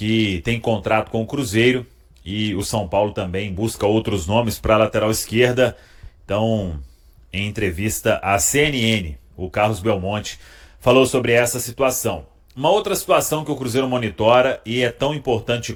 tem contrato com o Cruzeiro, e o São Paulo também busca outros nomes para a lateral esquerda. Então, em entrevista à CNN, o Carlos Belmonte falou sobre essa situação. Uma outra situação que o Cruzeiro monitora, e é tão importante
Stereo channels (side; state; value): both; identical; correlation 1.00